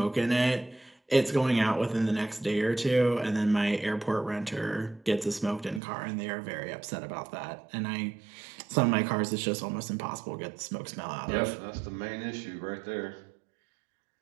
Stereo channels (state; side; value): drops out; left; at 5.8 s